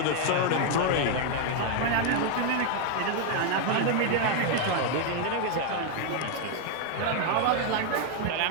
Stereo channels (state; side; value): different; both; correlation 0.01